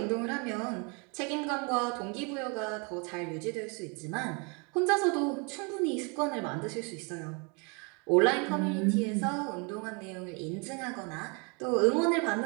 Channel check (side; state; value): left; quieter; 33.3 dB